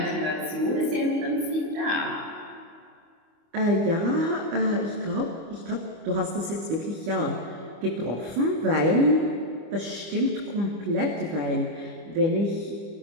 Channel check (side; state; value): left; late; 25 ms